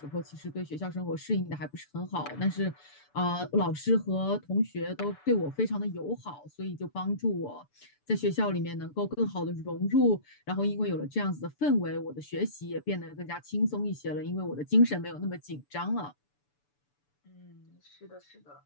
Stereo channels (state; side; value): late; right; 6.9 ms